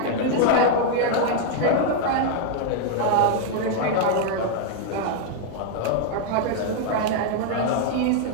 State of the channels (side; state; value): both; different; correlation 0.00